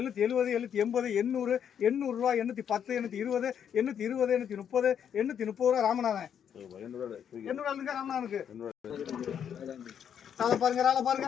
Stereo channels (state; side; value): quieter; right; 8.5 dB